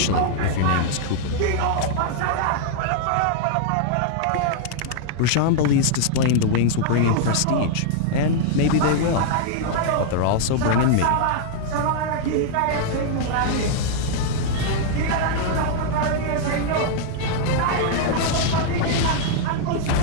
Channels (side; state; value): both; different; correlation -0.01